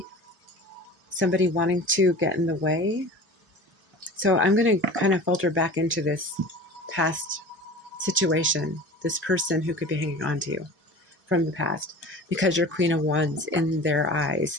somebody wanting to get in the way. So I'm going to kind of filter back into this past situation, this person who could be hanging on to you from the past, because you're Queen of Wands in their eyes.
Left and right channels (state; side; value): normal; both; correlation 0.39